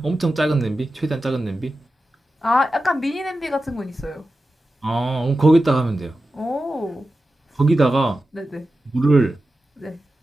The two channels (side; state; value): both; normal; correlation 0.93